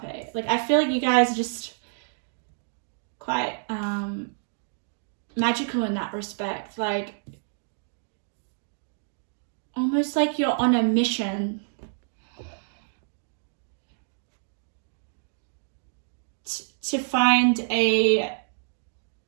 Like, I feel like you guys are just quite magical in that respect. Like, almost like you're on a mission to find an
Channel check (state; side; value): silent; left; digital silence